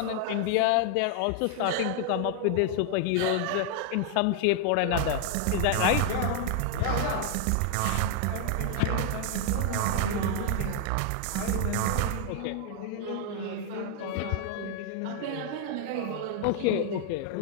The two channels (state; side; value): different; both; correlation 0.00